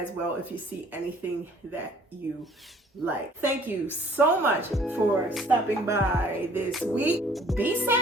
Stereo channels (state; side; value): normal; both; correlation 0.56